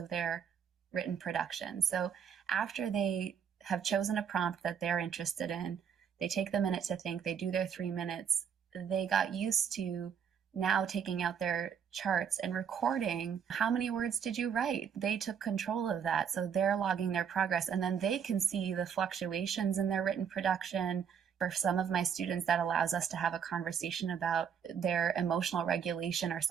their written production. So after they have chosen a prompt that they're interested in, they take the minute to think, they do their 3 minutes, they got used to now taking out their charts and recording how many words did you write. They took control of that. So they're logging their progress, and then they can see the fluctuations in their written production. For some of my students, that allows us to have a conversation about their emotional regulation or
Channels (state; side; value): quieter; left; 7.6 dB